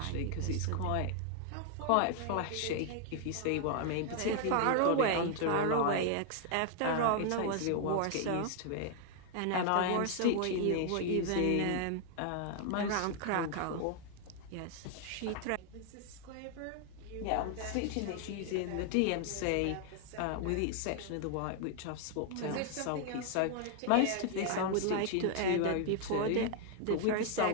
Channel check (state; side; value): different; both; correlation 0.00